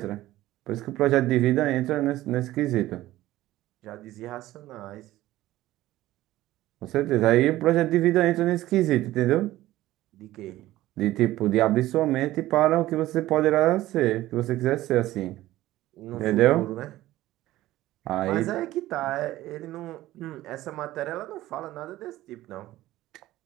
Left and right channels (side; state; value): left; quieter; 15.8 dB